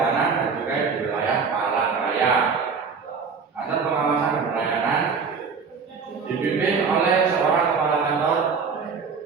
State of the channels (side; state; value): left; quieter; 5.4 dB